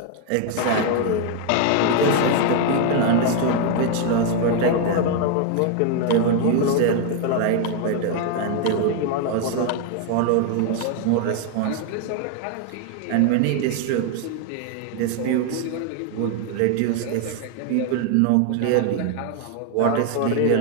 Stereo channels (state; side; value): different; both; correlation 0.00